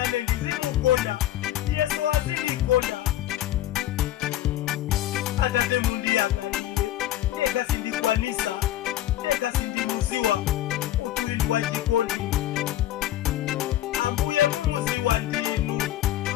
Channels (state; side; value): quieter; right; 13.5 dB